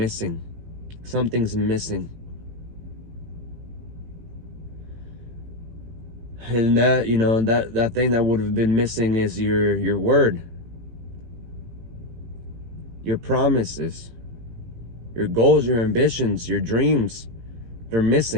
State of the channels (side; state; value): left; late; 18 ms